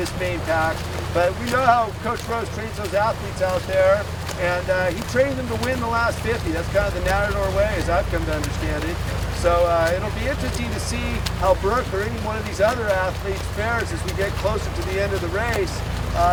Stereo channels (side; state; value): both; identical; correlation 1.00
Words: main pack, but we know how Coach Rose trains those athletes out there, and he trained them to win the last 50. That's kind of the Natador way, as I've come to understand it. So it'll be interesting to see how Brooke or any one of these other athletes fares as we get closer to the end of the race.